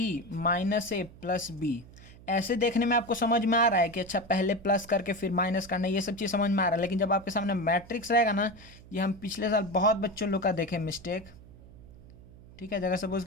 - A + B, ऐसे देखने में आपको समझ में आ रहा है कि अच्छा पहले प्लस करके फिर माइनस करना, ये सब चीज़ समझ में आ रहा है। लेकिन जब आपके सामने मैट्रिक्स रहेगा ना, ये हम पिछले साल बहुत बच्चों लोग का देखे मिस्टेक, ठीक है। जगह सपोज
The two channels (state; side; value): noise; right; hum, 20 dB below the sound